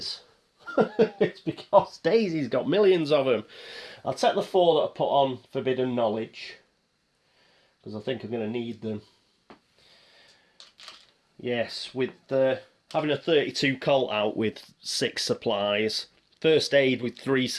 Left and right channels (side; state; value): both; identical; correlation 1.00